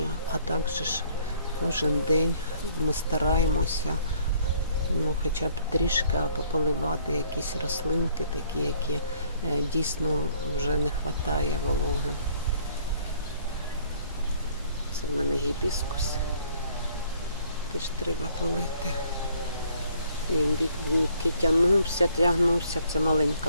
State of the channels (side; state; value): both; inverted; correlation -0.61